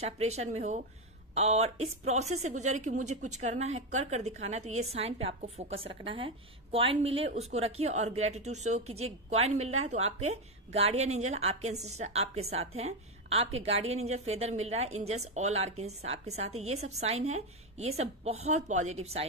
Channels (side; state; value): both; normal; correlation 0.10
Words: में हो, और इस प्रोसेस से गुजरे कि मुझे कुछ करना है, कर दिखाना है, तो ये साइन पे आपको फोकस रखना है। कॉइन मिले उसको रखिए और ग्रेटिट्यूड शो कीजिए। कॉइन मिल रहा है तो आपके गार्डियन एंजल, आपके एंसेस्टर आपके साथ हैं, आपके गार्डियन एंजल फेदर मिल रहा है, एंजल्स ऑल आर्कएंजल्स आपके साथ है। ये सब साइन है, ये सब बहुत पॉजिटिव